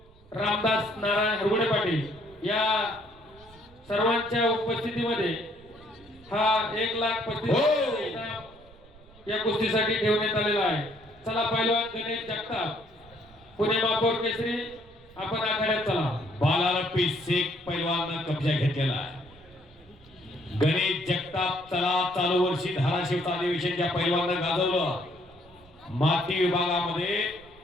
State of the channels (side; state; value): right; noise; rumble, 25 dB below the sound